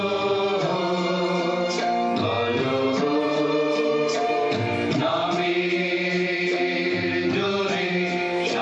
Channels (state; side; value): identical; both; correlation 1.00